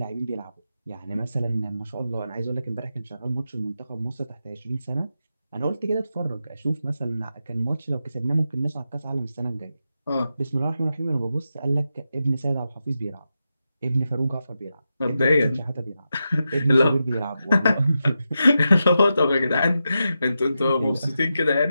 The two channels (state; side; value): inverted; both; correlation -0.88